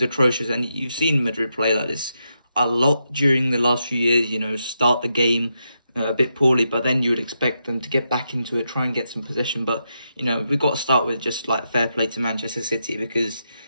atrocious, and you've seen Madrid play like this a lot during the last few years. Start the game a bit poorly, but then you would expect them to get back into it, try and get some possession. But we've got to start with just like fair play to Manchester City because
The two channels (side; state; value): both; inverted; correlation -0.83